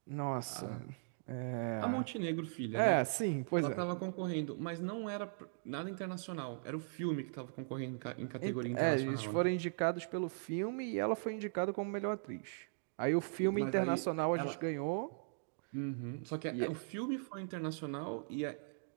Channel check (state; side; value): silent; left; digital silence